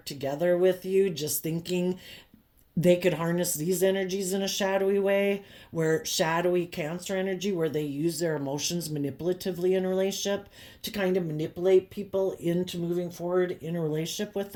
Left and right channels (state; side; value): identical; both; correlation 1.00